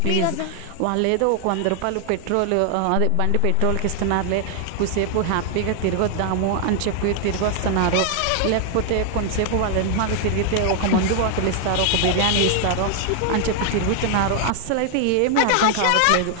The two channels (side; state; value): both; different; correlation 0.00